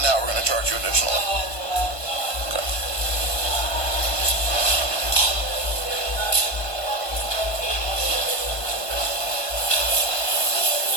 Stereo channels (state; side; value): late; right; 1.5 ms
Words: now, we're going to charge you additionally. Okay.